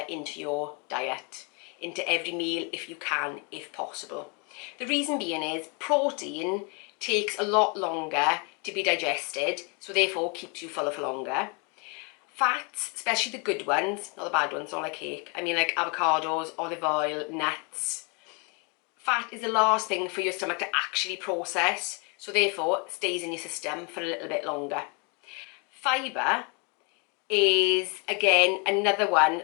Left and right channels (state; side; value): quieter; right; 33.4 dB